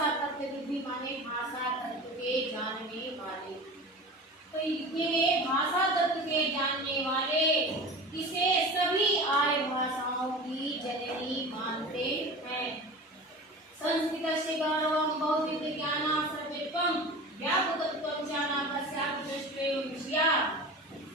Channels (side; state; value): both; normal; correlation 0.33